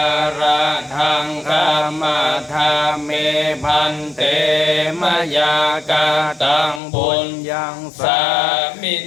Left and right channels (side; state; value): right; drops out; at 6.8 s